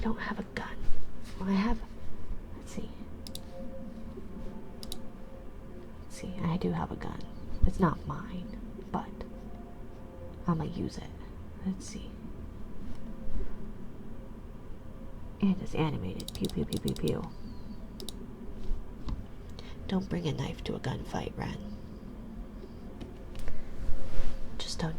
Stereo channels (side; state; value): both; identical; correlation 1.00